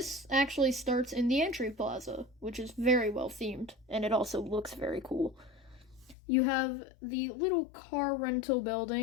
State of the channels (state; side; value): drops out; right; at 6.2 s